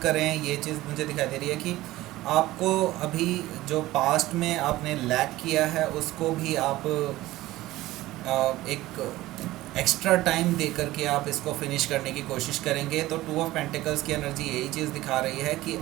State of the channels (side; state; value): left; quieter; 17.0 dB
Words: करें। ये चीज़ मुझे दिखाई दे रही है कि आपको अभी जो पास्ट में आपने लैक किया है उसको भी आप एक एक्स्ट्रा टाइम दे करके आप इसको फिनिश करने की कोशिश करेंगे। तो टू ऑफ पेंटिकल्स की एनर्जी यही चीज़ दिखा रही है कि